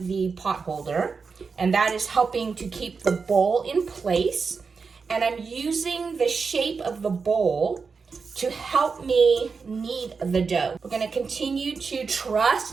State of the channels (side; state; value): left; quieter; 5.1 dB